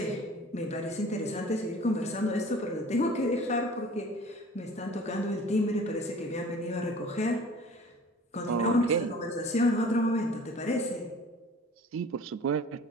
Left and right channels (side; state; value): both; normal; correlation 0.46